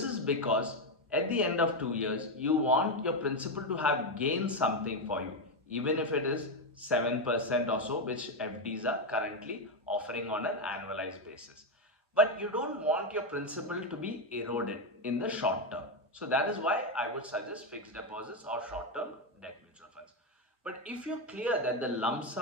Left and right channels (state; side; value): normal; both; correlation 0.08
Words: is because at the end of 2 years, you want your principal to have gained something for you, even if it is 7% or so, which FDs are currently offering on an annualized basis. But you don't want your principal to be eroded in the short term. So that is why I would suggest fixed deposits or short-term debt mutual funds. But if you're clear that the lump